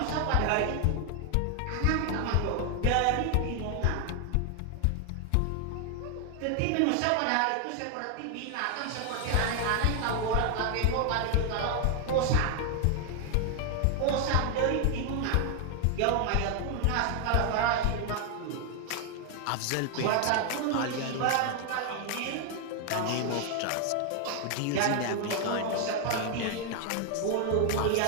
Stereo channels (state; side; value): different; both; correlation 0.00